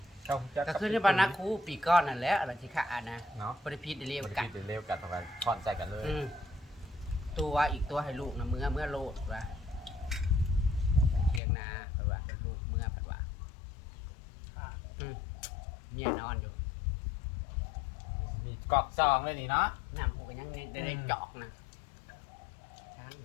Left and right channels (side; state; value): right; drops out; at 11.4 s